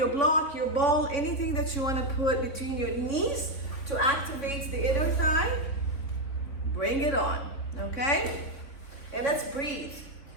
block, your ball, anything that you want to put between your knees to activate the inner thigh. Bring it on, okay? And let's breathe.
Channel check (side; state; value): right; late; 3.6 ms